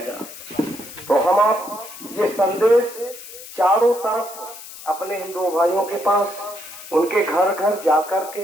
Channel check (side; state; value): left; noise; hiss, 14 dB below the sound